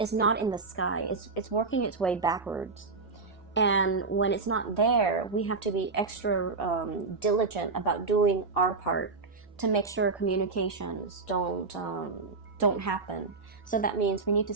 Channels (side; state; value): left; quieter; 4.2 dB